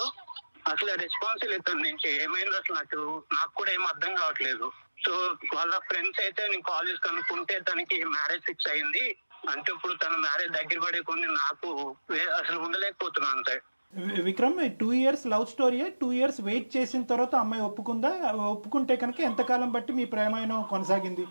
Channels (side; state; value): both; inverted; correlation -1.00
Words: అసలు రెస్పాన్స్ లేదు తన నుంచి. ఏమైంది అసలు నాకు కూడా ఏం అర్థం కావట్లేదు. సో వాళ్ళ ఫ్రెండ్స్ అయితే నేను కాల్ చేసి కనుక్కుంటే తనకి మ్యారేజ్ ఫిక్స్ అయింది. అంటే ఇప్పుడు తన మ్యారేజ్ దగ్గర పడే కొన్ని నాకు అసలు ఉండలేకపోతున్నాను అంతే. Vikram, 2 years love story. 2 years wait చేసిన తర్వాత అమ్మాయి ఒప్పుకుందా? ఒప్పుకుంటే కనుక ఎంతకాలం బట్టి మీ ప్రేమాయణం కొనసాగింది,